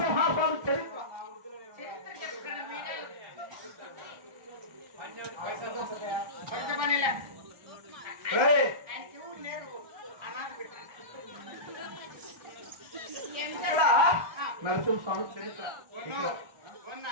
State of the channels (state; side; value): late; left; 1.3 ms